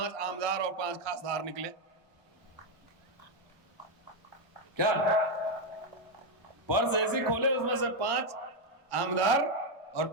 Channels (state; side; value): normal; both; correlation 0.04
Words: आमदार और 5 खासदार निकले। क्या पर्स ऐसे खोले उसमें से 5 आमदार और